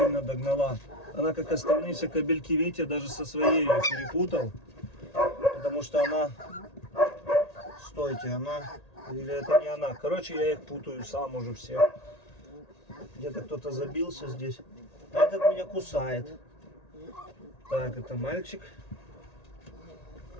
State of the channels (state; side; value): late; right; 1.8 ms